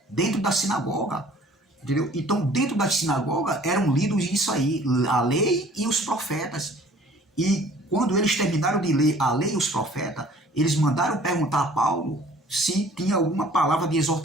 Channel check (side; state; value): both; normal; correlation 0.52